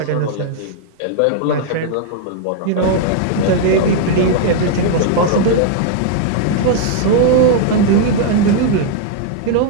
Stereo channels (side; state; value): both; different; correlation 0.00